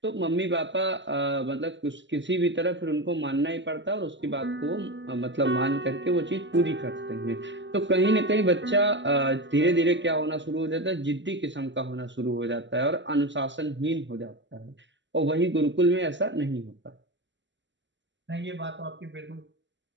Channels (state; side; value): late; left; 0.53 ms